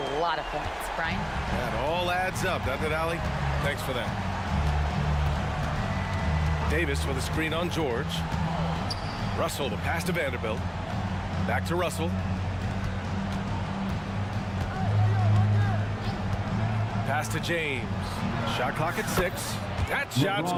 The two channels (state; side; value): identical; both; correlation 1.00